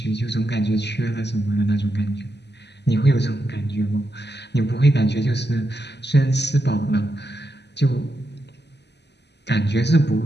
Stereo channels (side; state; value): right; late; 0.50 ms